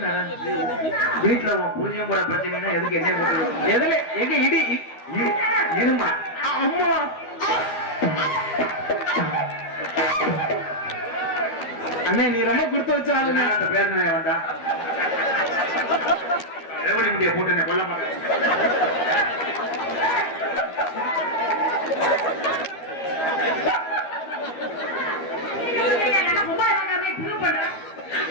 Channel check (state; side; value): late; right; 12 ms